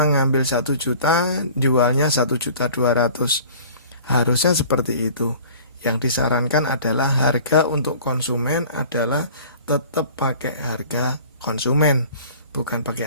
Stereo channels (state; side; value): inverted; both; correlation -0.46